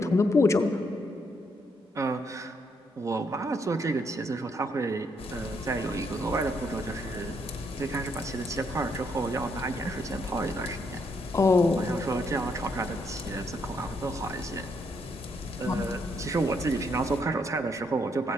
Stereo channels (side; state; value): both; normal; correlation 0.74